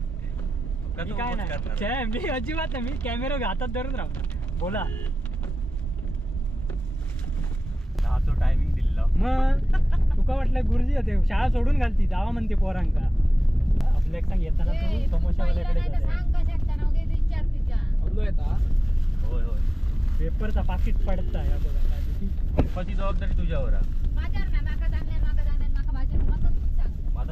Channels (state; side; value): normal; both; correlation 0.96